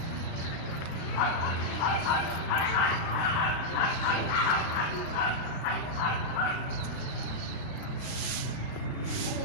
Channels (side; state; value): right; late; 37 ms